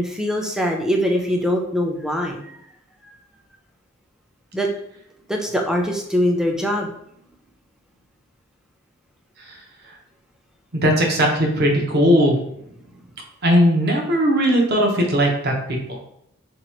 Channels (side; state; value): both; normal; correlation 0.60